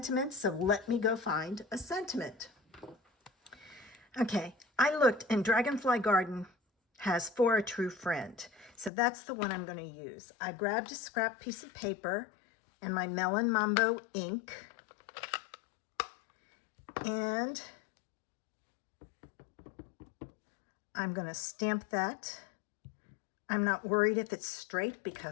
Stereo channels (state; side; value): drops out; right; at 8.9 s